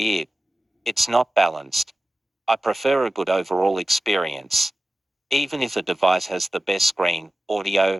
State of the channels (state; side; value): normal; both; correlation 0.94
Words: It's not balanced. I prefer a good overall experience. Even if a device has the best screen,